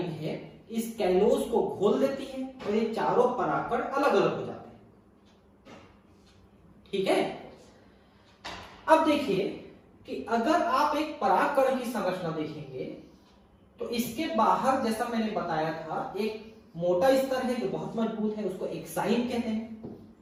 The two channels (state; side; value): identical; both; correlation 1.00